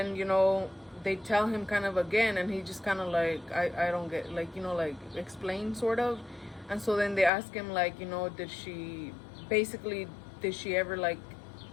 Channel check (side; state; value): right; drops out; at 7.3 s